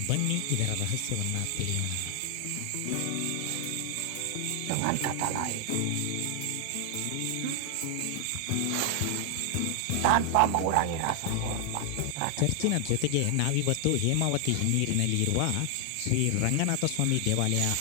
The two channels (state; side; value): different; both; correlation 0.00